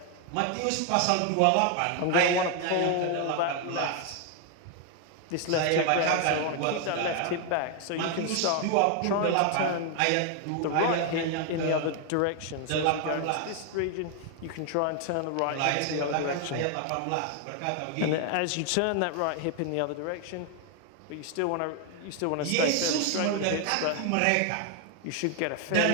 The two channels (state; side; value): different; both; correlation 0.01